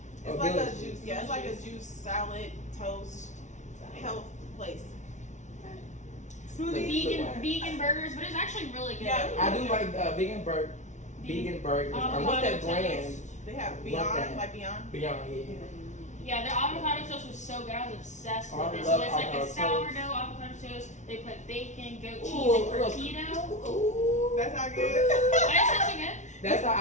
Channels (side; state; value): right; late; 0.35 ms